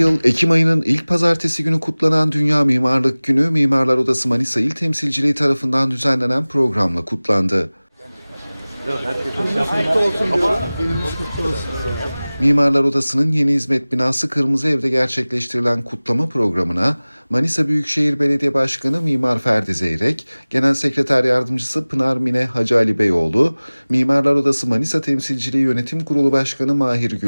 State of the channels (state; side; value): inverted; both; correlation -0.99